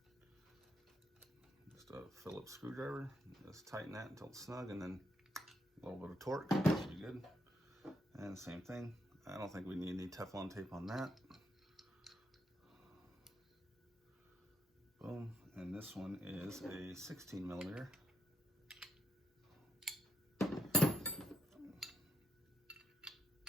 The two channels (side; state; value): both; normal; correlation 0.79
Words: Just a Phillips screwdriver, just tighten that until it's snug, and then a little bit of torque, should be good. And same thing, I don't think we need any Teflon tape on that. Boom, and this one is a 16 millimeter. And